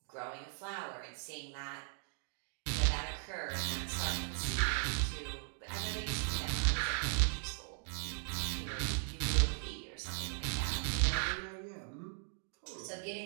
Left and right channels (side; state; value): left; silent; 52 dB below the other